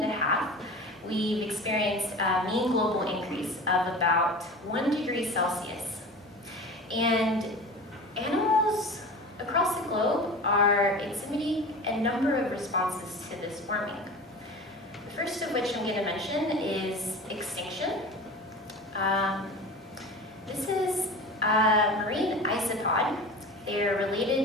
a half, we've experienced a mean global increase of about 1 degree Celsius. And animals across the globe are exhibiting a number of responses to this warming. The first of which I'm going to mention is extinction. This is a marine isopod. They're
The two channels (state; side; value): normal; both; correlation 0.35